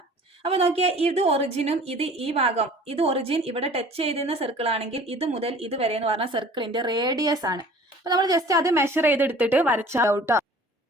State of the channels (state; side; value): normal; both; correlation 0.47